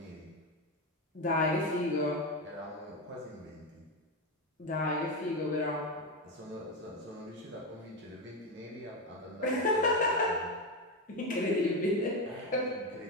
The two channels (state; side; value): normal; both; correlation 0.13